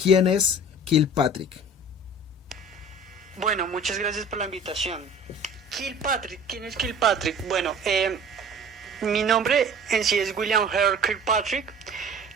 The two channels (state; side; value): normal; both; correlation 0.44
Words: ¿quién es Kilpatrick? Bueno, muchas gracias por la invitación. Kilpatrick, ¿quién es Kilpatrick? Bueno, mi nombre en sí es William Harold Kilpatrick.